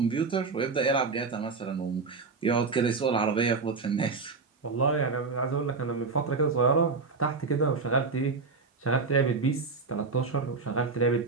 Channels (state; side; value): quieter; left; 4.4 dB